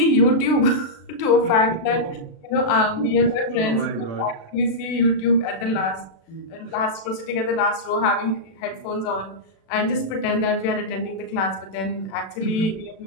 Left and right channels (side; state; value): right; late; 36 ms